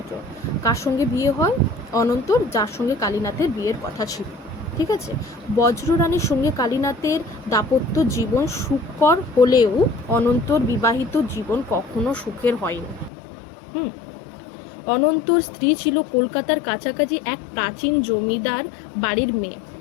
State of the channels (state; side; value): drops out; right; at 13.1 s